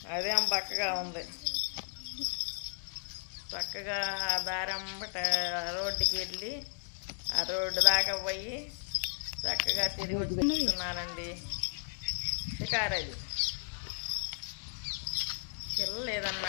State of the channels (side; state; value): right; silent; digital silence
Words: అదేం బక్కగా ఉంది. చక్కగా ఆ దారంబట రోడ్డుకి వెళ్ళి ఆ రోడ్డు దాకా పోయి చక్కగా తిరిగి వచ్చిస్తున్నానండి. షికారు అది. పిల్లలు